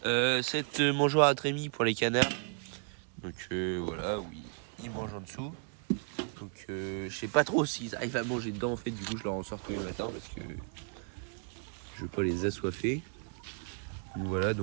Cette mangeoire à trémies pour les canards, donc voilà, où ils mangent en dessous. Donc je sais pas trop s'ils arrivent à manger dedans en fait, du coup je leur en sors tous les matins parce que je veux pas les assoiffer. Donc voilà,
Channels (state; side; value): silent; left; 55 dB below the other